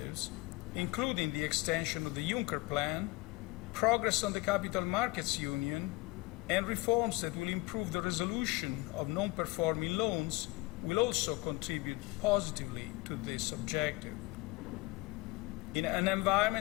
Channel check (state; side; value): quieter; right; 22.1 dB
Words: including the extension of the Juncker Plan, progress on the Capital Markets Union, and reforms that will improve the resolution of non-performing loans will also contribute positively to this objective. In an